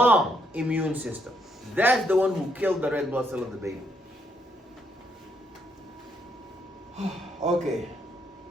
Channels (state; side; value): normal; both; correlation 0.74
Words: immune system. That's the one who killed the red blood cell of the baby. Okay.